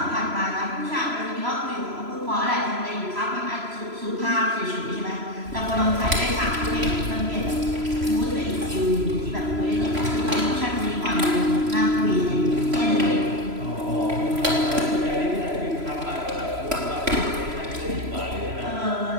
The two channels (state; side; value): late; left; 3.0 ms